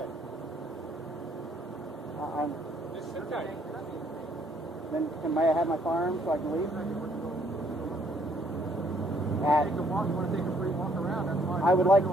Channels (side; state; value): both; normal; correlation 0.66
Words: I'm. It's okay. Then may I have my firearm so I can leave? Take a walk. You want to take a free walk around? That's fine. I would like